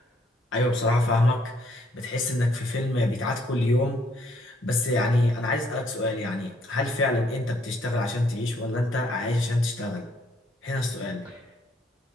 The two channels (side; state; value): both; normal; correlation 0.68